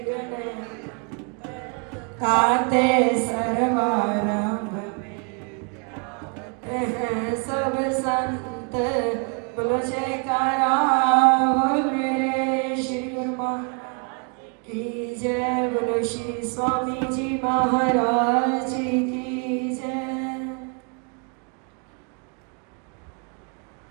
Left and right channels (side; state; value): left; quieter; 36.6 dB